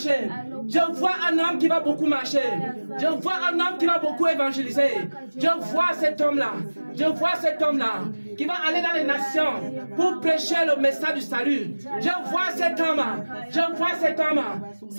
Je vois un homme qui va beaucoup marcher. Je vois un homme qui va beaucoup évangéliser. Je vois cet homme-là. Je vois cet homme-là qui va aller dans les nations pour prêcher le message du salut. Je vois cet homme. Je vois cet homme.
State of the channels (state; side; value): inverted; both; correlation -1.00